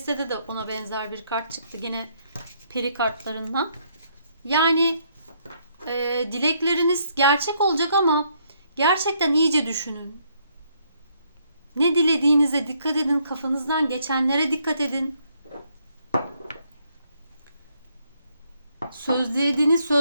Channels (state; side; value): inverted; both; correlation -0.71